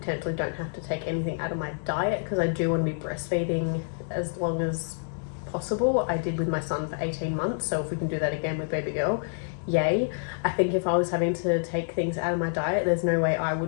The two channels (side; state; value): right; silent; digital silence